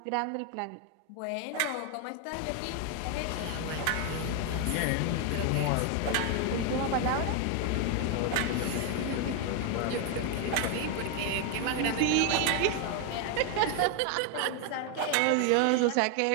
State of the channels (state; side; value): different; both; correlation 0.01